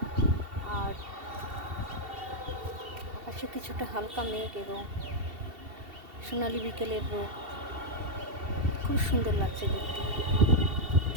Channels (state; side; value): late; left; 2.7 ms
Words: আর আকাশে কিছুটা হালকা মেঘ এবং সোনালি বিকেলের রোদ, খুব সুন্দর লাগছে দেখতে।